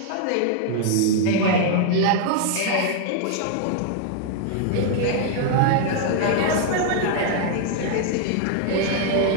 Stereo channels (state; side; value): different; both; correlation 0.00